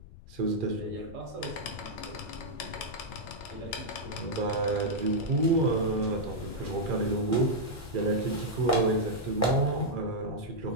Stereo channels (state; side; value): noise; left; rumble, 18 dB below the sound